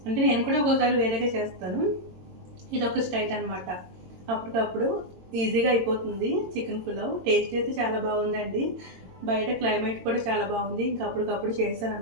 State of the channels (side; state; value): left; late; 22 ms